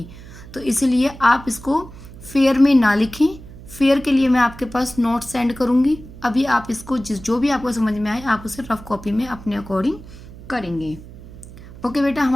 तो इसलिए आप इसको फेयर में ना लिखें। फेयर के लिए मैं आपके पास नोट्स सेंड करूँगी। अभी आप इसको जो भी आपको समझ में आए आप उसे रफ कॉपी में अपने अकॉर्डिंग करेंगे। ओके बेटा,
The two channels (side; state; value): right; noise; hum, 17 dB below the sound